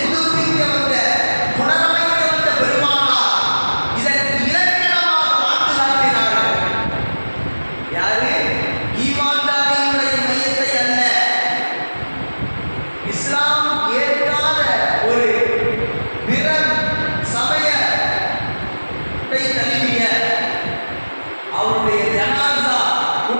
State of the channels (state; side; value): inverted; both; correlation -1.00